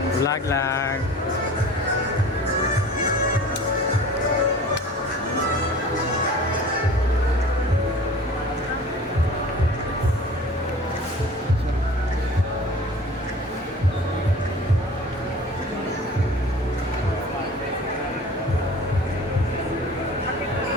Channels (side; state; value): both; normal; correlation 0.43